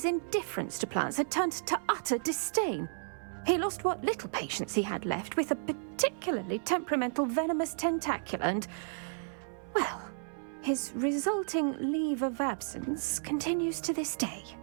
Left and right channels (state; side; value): silent; left; 56 dB below the other